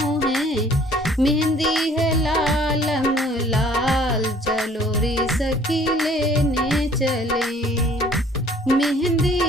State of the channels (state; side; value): normal; both; correlation 0.55